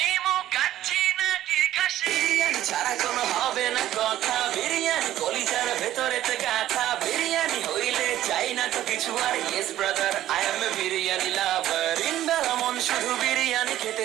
কাচ্চি নাকি খাসি? বিরিয়ানি ছাড়া কোনো হবে না কথা, বিরিয়ানি কলিজার ভেতরে গাথা। বিরিয়ানি হইলে চাই না তো কিছু আর, yes brother I M A biryani লাভার। দিনবেলা মন শুধু বিরিয়ানি খেতে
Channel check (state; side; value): quieter; left; 13.1 dB